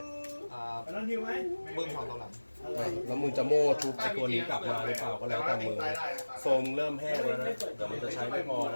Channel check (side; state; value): both; inverted; correlation -1.00